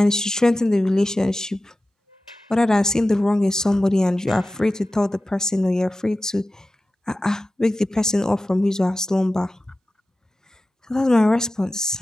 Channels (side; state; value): both; normal; correlation 0.94